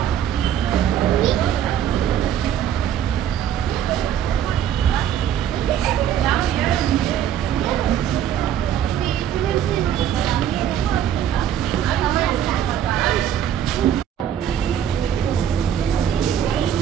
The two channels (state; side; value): quieter; left; 9.8 dB